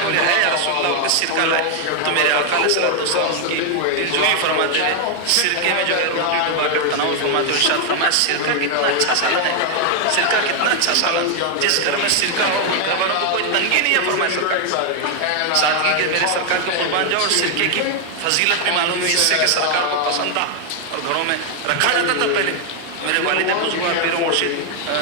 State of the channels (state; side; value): different; both; correlation 0.00